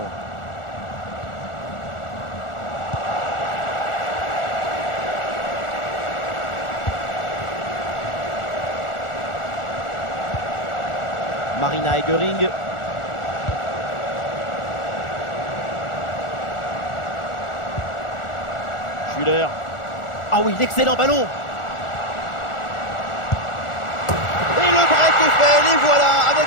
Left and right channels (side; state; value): right; late; 1.4 ms